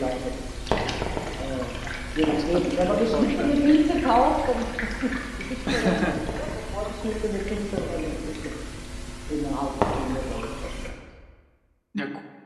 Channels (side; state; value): both; identical; correlation 1.00